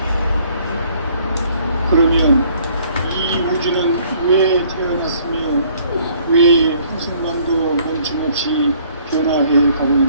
그러면 이 우주는 왜 태어났으며 왜 한순간도 멈춤없이 변화해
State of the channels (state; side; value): inverted; both; correlation -0.60